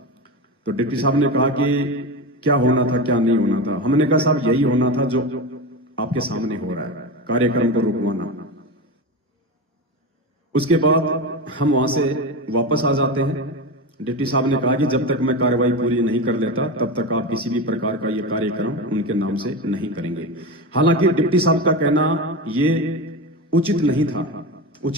तो डिप्टी साहब ने कहा कि क्या होना था क्या नहीं होना था। हमने कहा साहब, यही होना था जो आपके सामने हो रहा है, कार्यक्रम को रुकवाना। उसके बाद हम वहां से वापस आ जाते हैं। डिप्टी साहब ने कहा कि जब तक मैं कार्रवाई पूरी नहीं कर लेता तब तक आप किसी भी प्रकार का ये कार्यक्रम उनके नाम से नहीं करेंगे। हालांकि डिप्टी साहब का कहना ये उचित नहीं था।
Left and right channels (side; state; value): both; normal; correlation 0.21